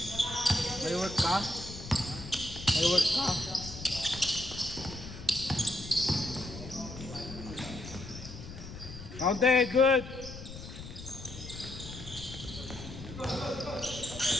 May work ka? May work ka? Counted, good!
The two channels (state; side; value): noise; left; rumble, 12 dB below the sound